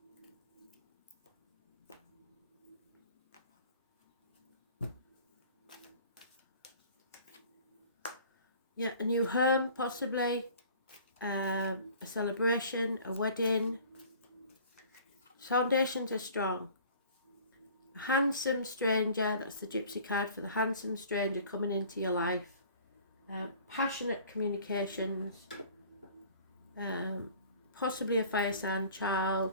Yeah, a new home possibly, a celebration, a wedding. Foundations are strong. A handsome stranger, that's the gypsy card for the handsome stranger coming into your life. Passionate communications, possibly a fire sign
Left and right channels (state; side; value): inverted; both; correlation -0.48